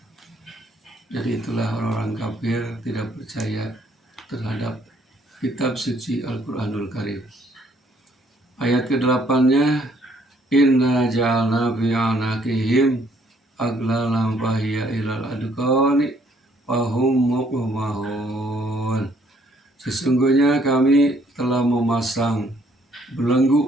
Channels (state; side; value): normal; both; correlation 0.65